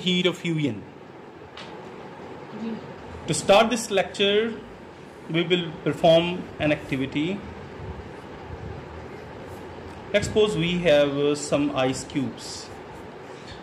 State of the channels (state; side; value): identical; both; correlation 1.00